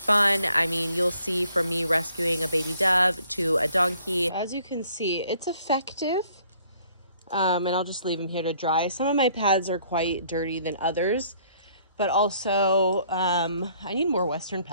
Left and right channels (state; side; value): inverted; both; correlation -0.62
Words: I mean, you'll see from me rescuing a baby dove to a donkey. As you can see, it's effective. And I'll just leave them here to dry. Some of my pads are quite dirty than others, but also I need more Western